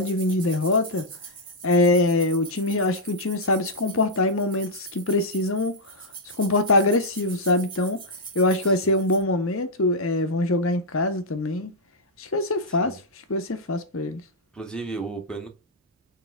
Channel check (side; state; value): both; normal; correlation -0.05